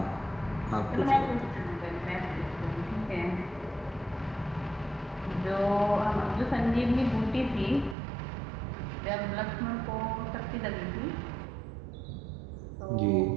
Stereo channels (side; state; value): left; drops out; at 8.0 s